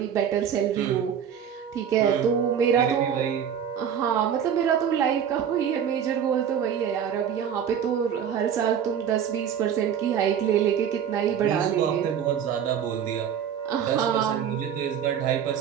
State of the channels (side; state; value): left; quieter; 8.5 dB